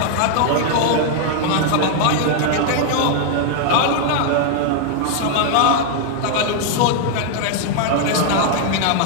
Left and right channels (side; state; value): both; different; correlation 0.00